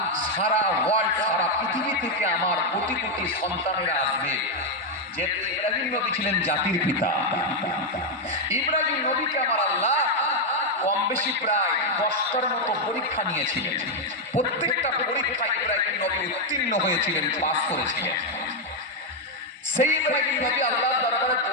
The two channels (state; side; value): normal; both; correlation 0.02